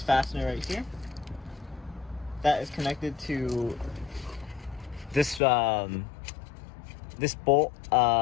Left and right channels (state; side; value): drops out; right; at 5.4 s